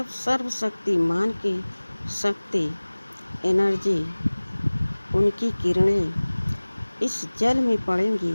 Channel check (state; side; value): inverted; both; correlation -1.00